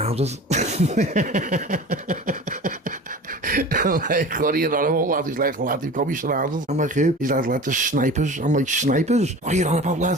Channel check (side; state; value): both; normal; correlation 0.37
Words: I'm like, what are you on about, lad? He's like, lad, you've got me surrounded. I'm like, who? He's like, lad, there's snipers. I'm like, snipers? What are you on about,